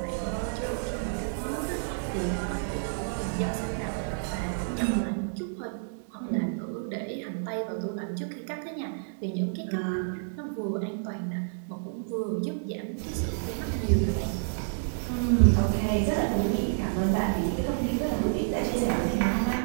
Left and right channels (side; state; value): left; silent; digital silence